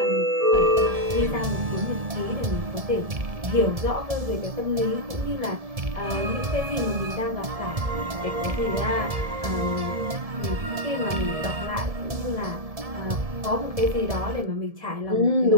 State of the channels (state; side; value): late; left; 1.7 ms